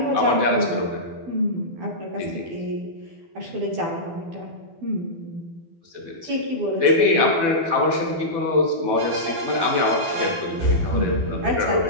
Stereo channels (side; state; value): left; late; 12 ms